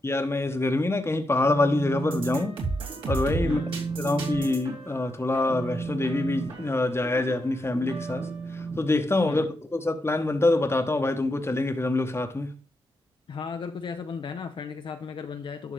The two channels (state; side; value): normal; both; correlation 0.84